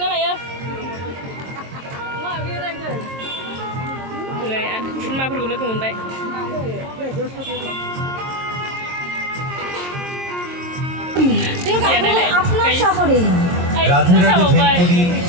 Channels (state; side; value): late; left; 22 ms